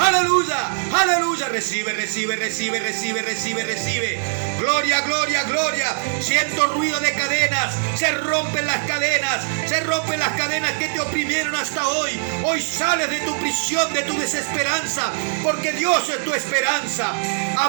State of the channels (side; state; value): left; silent; digital silence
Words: aleluya. Recibe, recibe, recibe, recibe, recibe, recibe. Gloria, gloria, gloria. Siento ruido de cadenas. Se rompen las cadenas. Se rompen las cadenas que te oprimieron hasta hoy. Hoy sales de tu prisión, de tu desesperanza, porque Dios es tu esperanza.